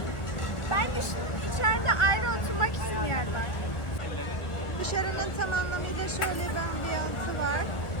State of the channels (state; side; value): late; right; 1.2 ms